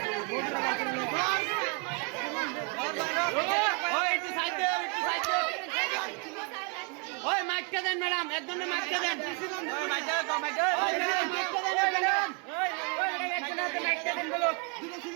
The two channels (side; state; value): left; quieter; 34.6 dB